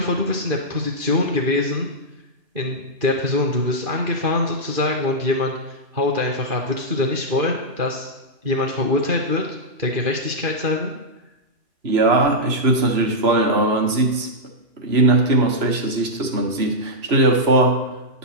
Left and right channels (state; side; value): late; left; 3.0 ms